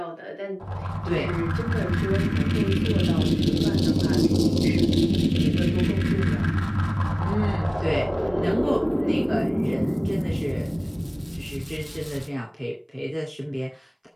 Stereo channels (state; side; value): identical; both; correlation 1.00